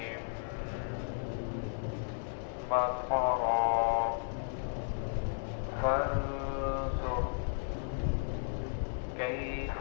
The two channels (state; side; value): silent; right; digital silence